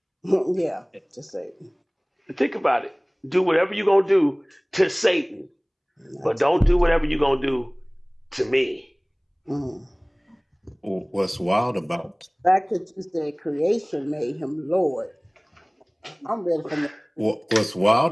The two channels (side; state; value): both; identical; correlation 1.00